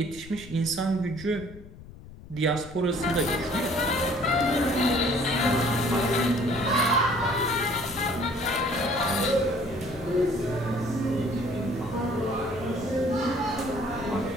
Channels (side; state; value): left; noise; rumble, 17 dB below the sound